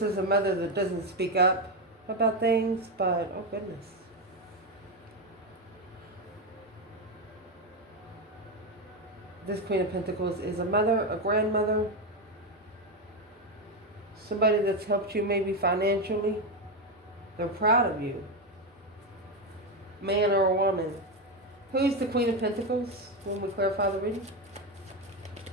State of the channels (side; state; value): both; normal; correlation 0.11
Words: is a mother that doesn't speak up about things, but oh goodness. This Queen of Pentacles is a mother, a grandmother, somebody that's helped you maybe financially. They're proud of you. Man or a woman. Who's the Queen of Pentacles when we clarify the reading?